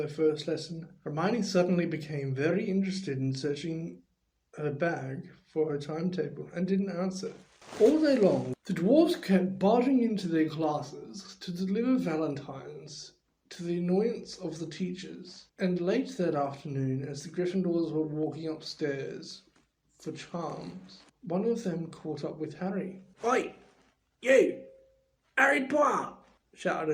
first lesson. Hermione suddenly became very interested in searching her bag for her timetable and didn't answer. All day long, the dwarves kept barging into their classes to deliver valentines to the annoyance of the teachers, and late that afternoon, as the Gryffindors were walking upstairs for charms, one of them caught up with Harry. "Oi, you! Harry Potter!"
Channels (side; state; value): both; identical; correlation 1.00